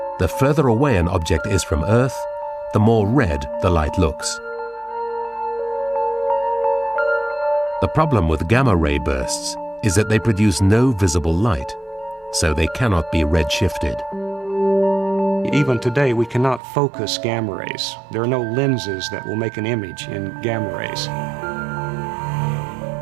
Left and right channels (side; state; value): left; drops out; at 16.6 s